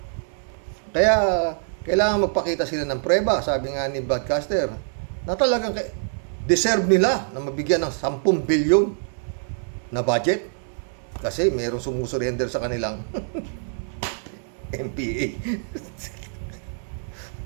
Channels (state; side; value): silent; left; digital silence